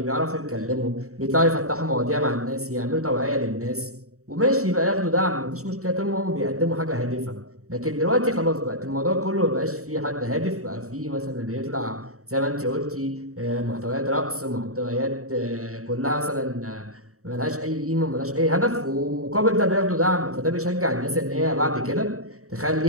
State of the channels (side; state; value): left; late; 0.65 ms